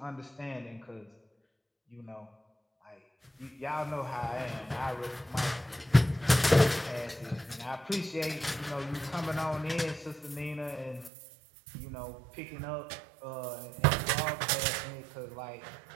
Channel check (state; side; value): drops out; left; at 11.1 s